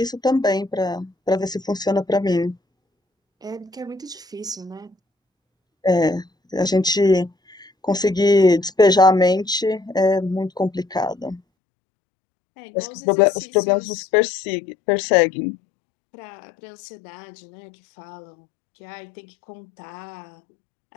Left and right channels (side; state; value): right; drops out; at 11.4 s